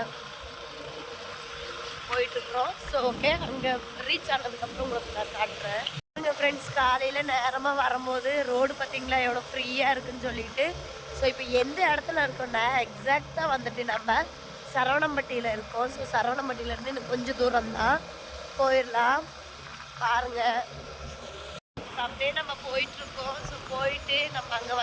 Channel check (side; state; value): both; identical; correlation 1.00